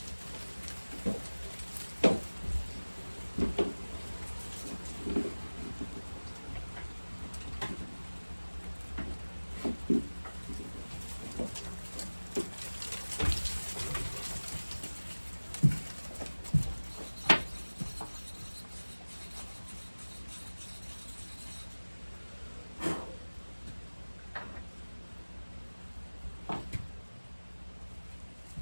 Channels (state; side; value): inverted; both; correlation -1.00